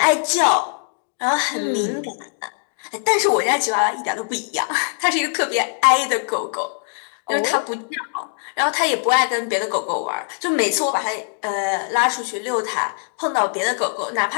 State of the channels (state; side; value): silent; right; digital silence